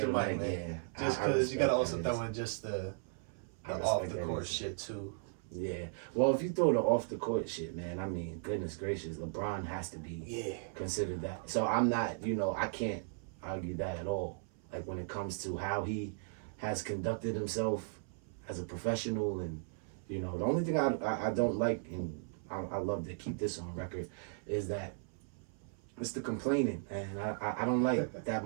to Mike, man. Yeah. Just because you gotta also throw in just the off the court shit too. Yeah. Well, if you throw the off the court shit, man, I mean, goodness gracious, LeBron has to be considered that. So I'm not, I can't argue that at all. Like when it comes to how he has conducted himself as a professional, and the only thing I don't like, and I love to keep this on record, is that it's the complaining, and I don't like that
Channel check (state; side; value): silent; left; 53 dB below the other